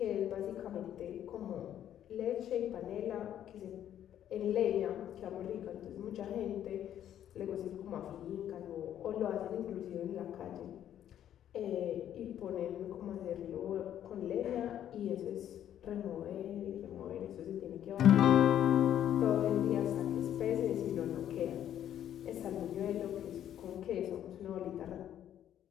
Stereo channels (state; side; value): quieter; right; 10.7 dB